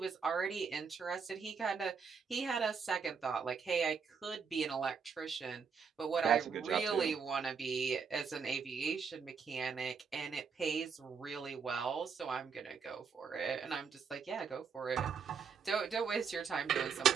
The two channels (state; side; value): quieter; left; 6.0 dB